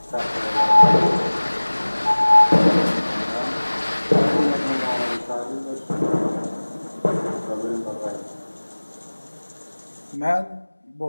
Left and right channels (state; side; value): inverted; both; correlation -1.00